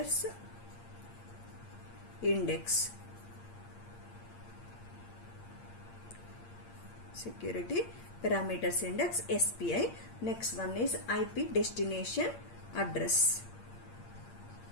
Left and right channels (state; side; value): late; right; 8.7 ms